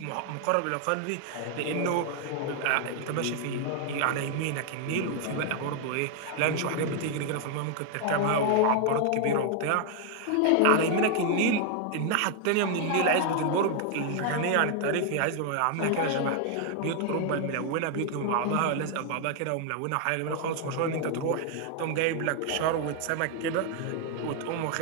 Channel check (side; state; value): both; different; correlation 0.00